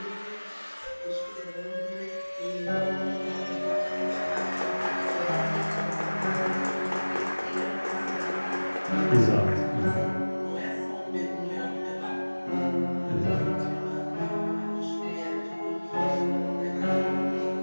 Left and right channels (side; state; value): both; inverted; correlation -1.00